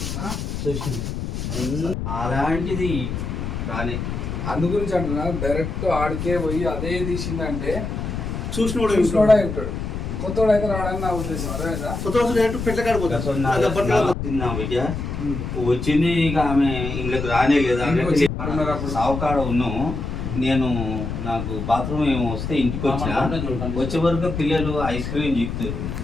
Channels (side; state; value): left; noise; rumble, 4 dB below the sound